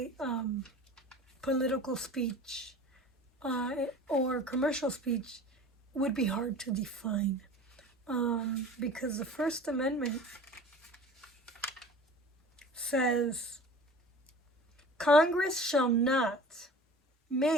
political speech or commercial speech would be hard to define. Because the First Amendment says Congress shall make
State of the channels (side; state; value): both; normal; correlation 0.41